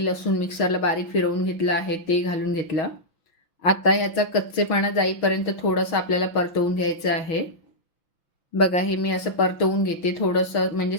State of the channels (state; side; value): late; right; 5.9 ms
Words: लसूण मिक्सरला बारीक फिरवून घेतलं आहे ते घालून घेतलं. आता ह्याचा कच्चेपणा जाईपर्यंत थोडंसं आपल्याला परतवून घ्यायचं आहे. बघा हे मी असं परतवून घेते थोडंसं म्हणजे